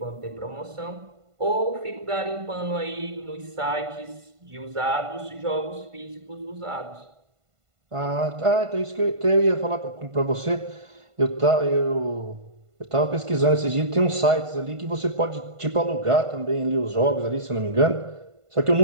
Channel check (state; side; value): late; left; 1.5 ms